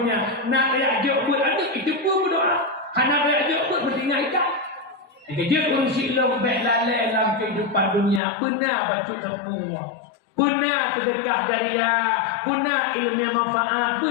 Nak reajak buat anak itu pun berdoa. Nak reajak buat bertinggal ikat. Kerja urusik lo baik lalai dalam kehidupan dunia. Benar baca tepung. Benar sedekah jariah. Benar ilmu yang manfaat.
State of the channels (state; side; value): drops out; right; at 8.2 s